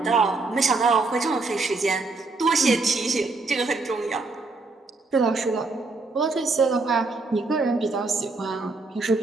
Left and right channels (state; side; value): quieter; left; 3.6 dB